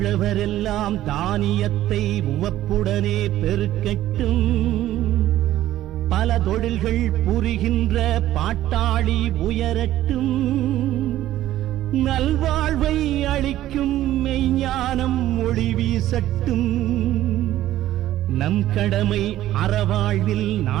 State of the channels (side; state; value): left; quieter; 13.7 dB